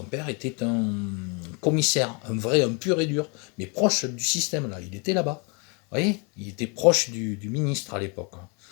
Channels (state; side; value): quieter; right; 33.4 dB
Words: père était un commissaire, un pur et dur, mais proche du système, là. Il était là-bas. Vous voyez, il était proche du ministre à l'époque.